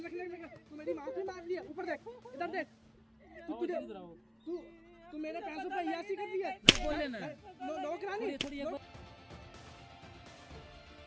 रखने में तू मेरी माफी मांग लिया ऊपर देख इधर देख तू मेरे पैसों पर अय्यासी कर दिया बोल लेना नौकरानी थोड़ी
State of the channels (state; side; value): identical; both; correlation 1.00